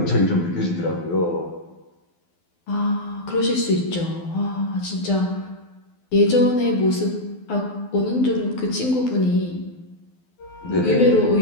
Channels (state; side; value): late; right; 12 ms